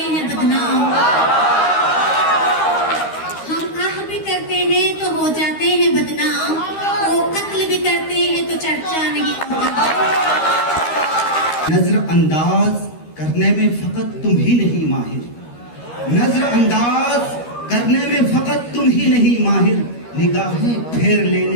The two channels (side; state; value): right; late; 13 ms